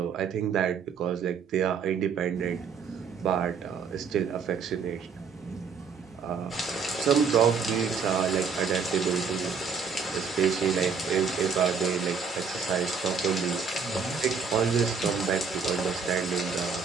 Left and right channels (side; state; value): left; quieter; 5.7 dB